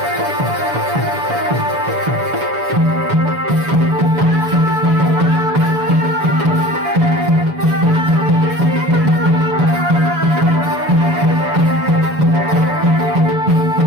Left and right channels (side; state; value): left; late; 7.0 ms